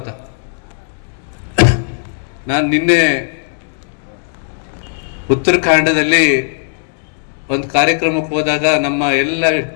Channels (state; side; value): silent; right; digital silence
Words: ನಾನು ನಿನ್ನೆ ಉತ್ತರಾಖಂಡದಲ್ಲಿ ಒಂದು ಕಾರ್ಯಕ್ರಮಕ್ಕೆ ಹೋದಾಗ ನಮ್ಮ ಎಲ್ಲ